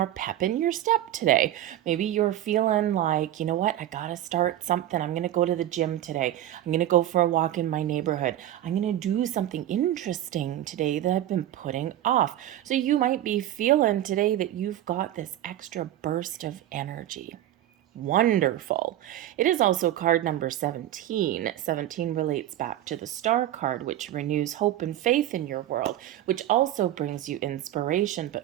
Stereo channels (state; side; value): quieter; left; 12.9 dB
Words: pep in your step today. Maybe you're feeling like, you know what, I gotta start something. I'm gonna go to the gym today. I'm gonna go for a walk in my neighborhood. I'm gonna do something interesting today that I've been putting off. So you might be feeling today that you've got this extra burst of energy. Wonderful. It is also card number 17. 17 relates back to the star card, which renews hope and faith in your world, which also brings you inspiration,